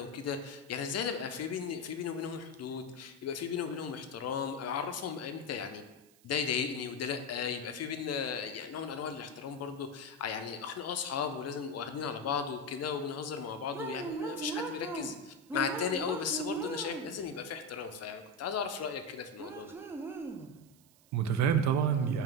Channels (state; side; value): noise; right; hiss, 28 dB below the sound